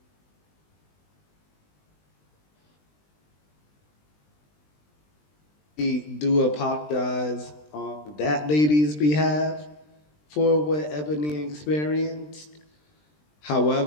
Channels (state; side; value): late; right; 20 ms